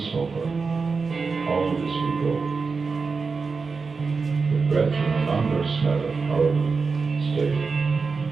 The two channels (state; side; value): quieter; left; 4.7 dB